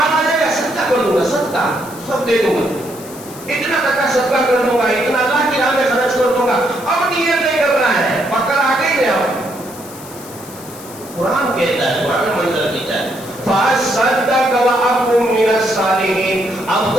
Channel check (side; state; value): left; noise; hiss, 17 dB below the sound